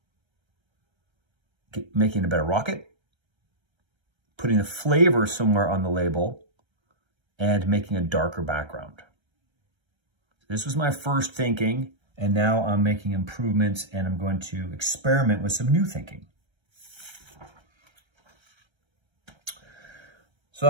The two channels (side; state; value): left; late; 1.3 ms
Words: Making a better rocket, putting a flavor somewhere on the label, and making a darker background. This was my first thinking. And now I'm making improvements and I'm going to experiment with some new thinking. So